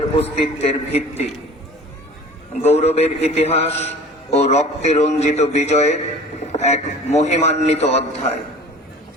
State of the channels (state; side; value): normal; both; correlation 0.43